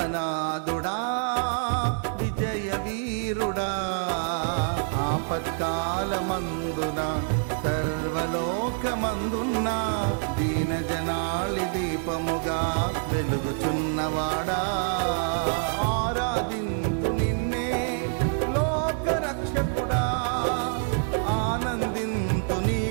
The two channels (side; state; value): left; silent; 60 dB below the other